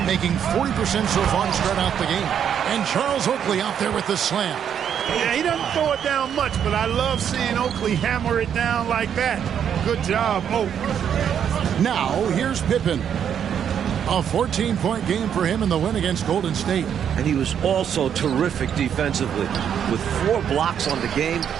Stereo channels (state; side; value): quieter; left; 8.6 dB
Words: making 40% so far to start out the game. And Charles Oakley out there with the slam. Yeah, he doesn't throw it down much, but I love seeing Oakley hammer it down like that. Good job, Oak. Now, here's Pippen. A 14-point game for him in the win against Golden State. And he was also terrific defensively, with 4 blocks on the game,